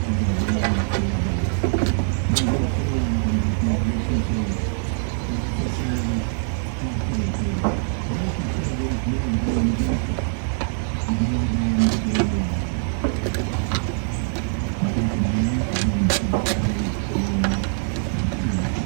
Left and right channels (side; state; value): left; silent; digital silence